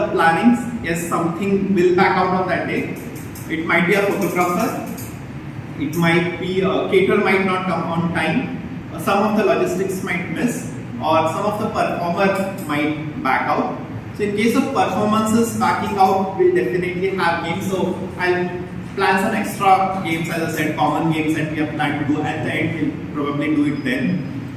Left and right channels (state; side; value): identical; both; correlation 1.00